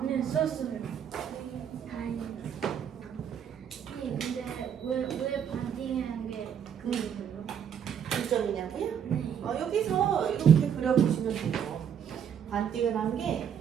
네, 썼어요. 다행이다. 근데 왜 반띵한 게 그거예요? 중점이냐고요? 네. 여기서 이렇게 그려보시면 돼요. 반띵을 한 게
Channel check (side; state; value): left; quieter; 8.4 dB